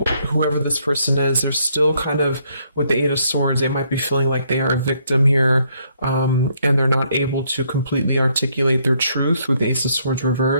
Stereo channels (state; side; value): inverted; both; correlation -0.70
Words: whoever this person is, they're still kind of, with the Eight of Swords, they might be feeling like they are a victim here, and they're not able to completely articulate their truth with the Ace of Swords